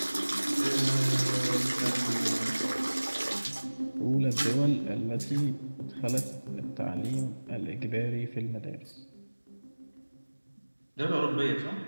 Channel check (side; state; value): both; inverted; correlation -1.00